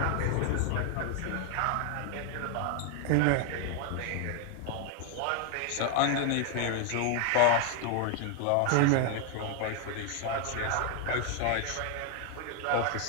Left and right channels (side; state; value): both; different; correlation 0.00